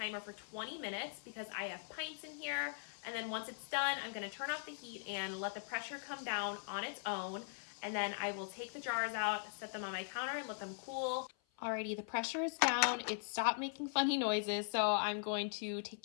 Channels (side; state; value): right; silent; 51 dB below the other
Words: for 20 minutes because I have pints in here. And then once it's done, I'm going to turn off the heat and let the pressure come down on its own. And then I will take the jars out, set them on my counter, and let them cool. Alrighty, the pressure is down. It stopped making funny noises, so I'm going to take